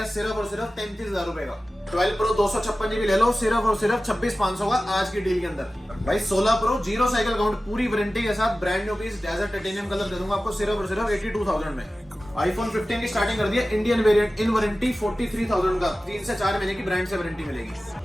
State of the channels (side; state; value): both; normal; correlation 0.95